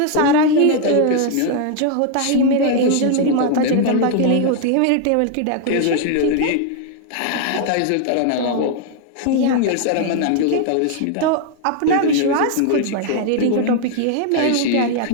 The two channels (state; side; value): different; both; correlation 0.00